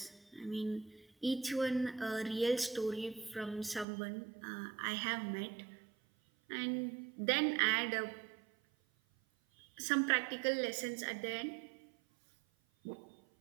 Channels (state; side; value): drops out; left; at 3.9 s